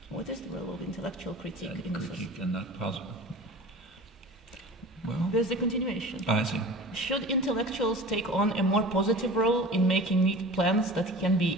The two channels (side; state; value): both; normal; correlation 0.38